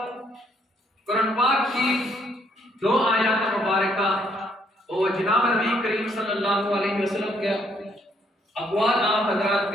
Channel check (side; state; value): both; normal; correlation 0.69